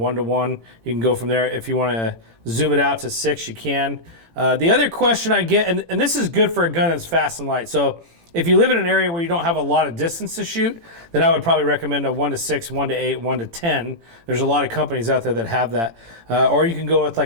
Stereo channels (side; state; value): left; late; 18 ms